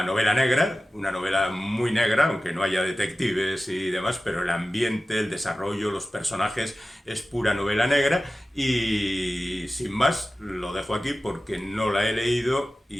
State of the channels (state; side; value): normal; both; correlation 0.96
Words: novela negra, una novela muy negra, aunque no haya detectives y demás, pero el ambiente, el desarrollo, los personajes es pura novela negra, y sin más lo dejo aquí porque no la he leído